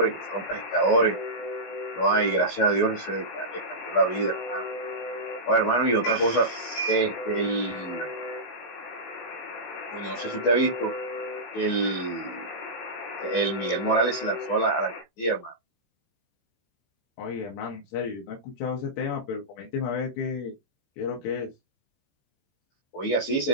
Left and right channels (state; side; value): late; right; 18 ms